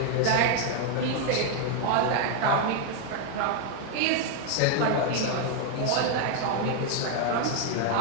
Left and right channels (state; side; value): different; both; correlation 0.00